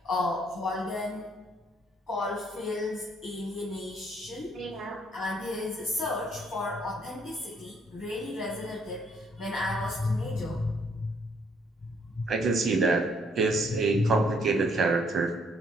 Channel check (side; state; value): both; normal; correlation 0.67